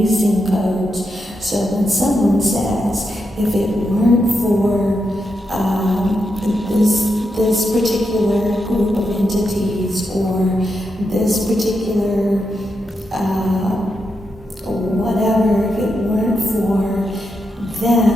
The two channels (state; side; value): normal; both; correlation 0.85